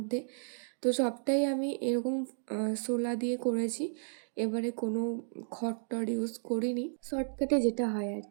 তো সবটাই আমি এরকম শোলা দিয়ে করেছি। এবারে কোনো খড়-টড় ইউজ করিনি, শর্টকাটে যেটা হয় আর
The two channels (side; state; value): left; silent; digital silence